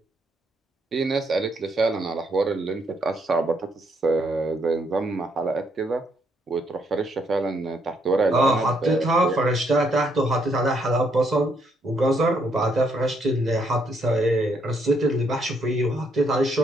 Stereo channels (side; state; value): both; normal; correlation 0.73